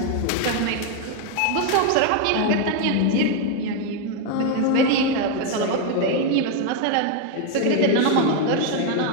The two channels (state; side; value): different; both; correlation 0.01